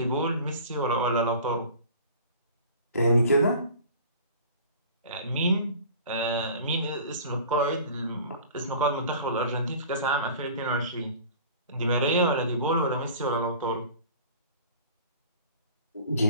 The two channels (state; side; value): inverted; both; correlation -0.43